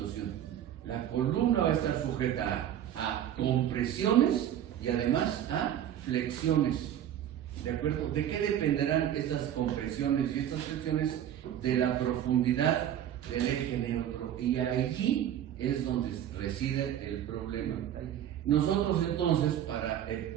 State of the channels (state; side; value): quieter; left; 10.6 dB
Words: La columna va a estar sujeta a compresiones y además a flexiones. ¿De acuerdo? ¿De qué dependerán estas compresiones y estas flexiones? De la profundidad del eje neutro. Y allí es donde reside el problema. Nosotros entonces, para